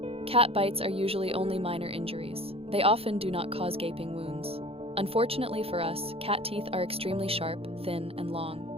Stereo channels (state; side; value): late; left; 0.28 ms